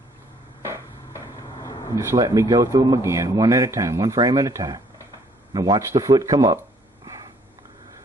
Just let me go through them again, one at a time, one frame at a time. Now watch the foot come up.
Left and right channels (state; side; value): normal; both; correlation 0.62